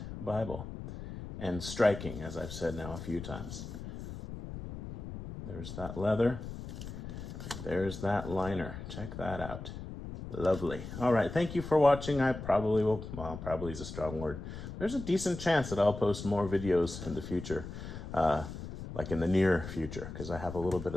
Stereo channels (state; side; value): noise; left; rumble, 9 dB below the sound